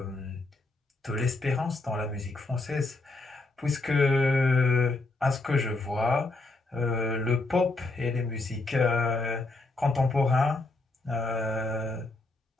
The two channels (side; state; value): right; quieter; 3.1 dB